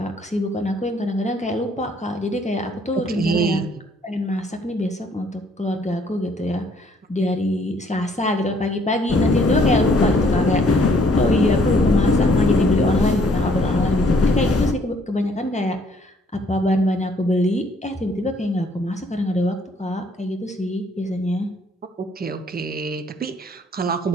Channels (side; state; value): both; normal; correlation 0.63